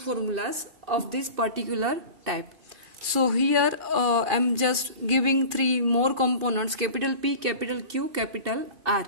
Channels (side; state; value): left; late; 2.5 ms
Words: of this particular type. So here I'm just giving three more components: capital P, capital Q, capital R.